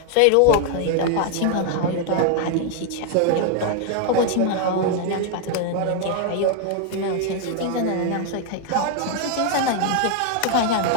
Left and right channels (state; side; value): different; both; correlation 0.00